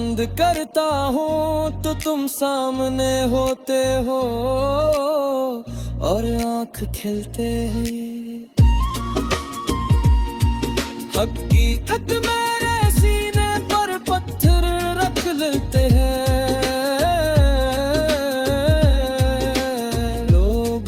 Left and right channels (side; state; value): both; identical; correlation 1.00